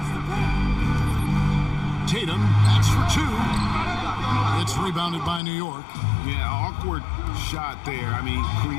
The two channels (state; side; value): drops out; right; at 5.4 s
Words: Tatum, that's for two. It's rebounded by New York. Yeah, awkward shot there. I mean,